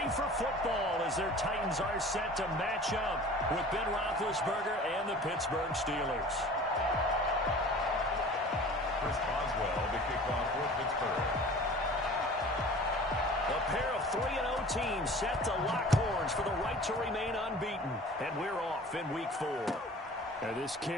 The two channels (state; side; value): normal; both; correlation 0.43